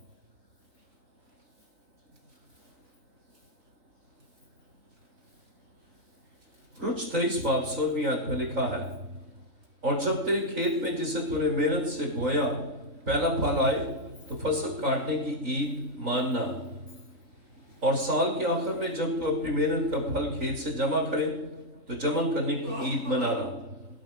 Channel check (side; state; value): left; late; 3.8 ms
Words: خروج 23 باب 16ویں آیت میں لکھا ہے، اور جب تیرے کھیت میں جسے تو نے محنت سے بویا پہلا پھل آئے تو فصل کاٹنے کی عید ماننا، اور سال کے آخر میں جب تو اپنی محنت کا پھل کھیت سے جمع کرے تو جمع کرنے کی عید منانا،